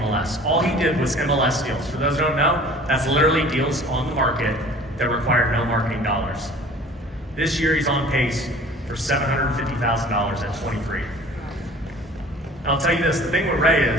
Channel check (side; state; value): both; normal; correlation 0.47